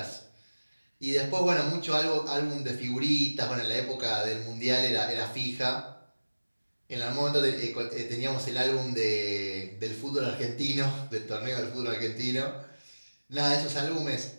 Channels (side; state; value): both; inverted; correlation -1.00